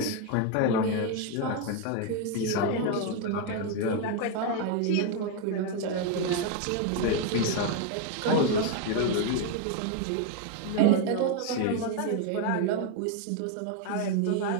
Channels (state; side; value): different; both; correlation 0.01